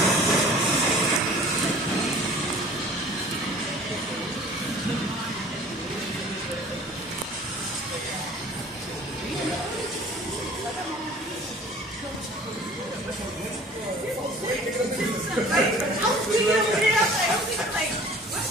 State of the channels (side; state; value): both; normal; correlation 0.47